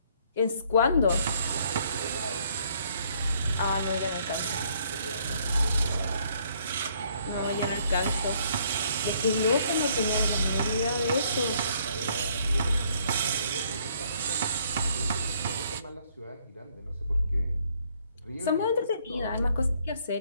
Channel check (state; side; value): inverted; both; correlation -0.65